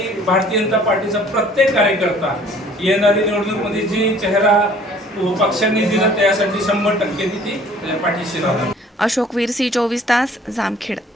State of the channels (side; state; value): both; normal; correlation 0.54